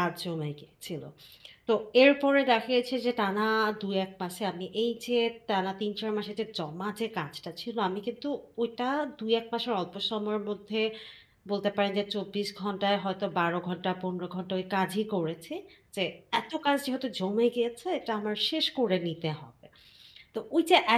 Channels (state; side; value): identical; both; correlation 1.00